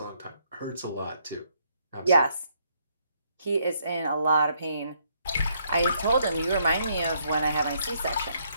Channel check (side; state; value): both; inverted; correlation -0.72